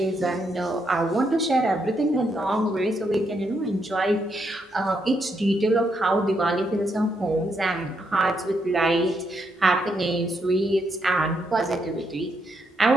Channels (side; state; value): both; normal; correlation 0.78